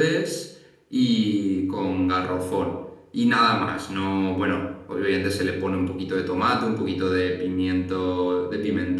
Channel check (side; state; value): both; identical; correlation 1.00